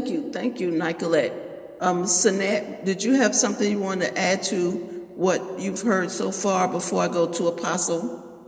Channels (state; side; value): identical; both; correlation 1.00